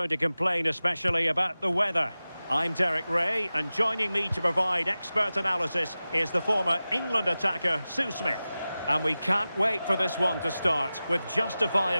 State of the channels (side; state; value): both; inverted; correlation -0.95